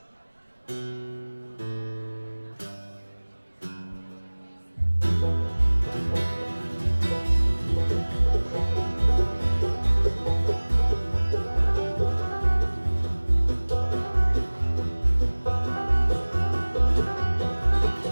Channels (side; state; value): both; inverted; correlation -1.00